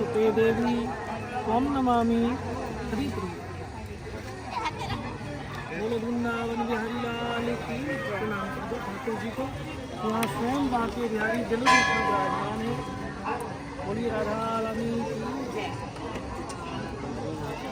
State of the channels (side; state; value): both; identical; correlation 1.00